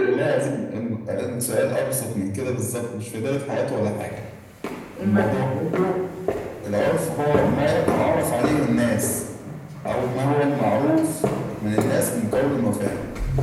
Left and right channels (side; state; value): both; identical; correlation 1.00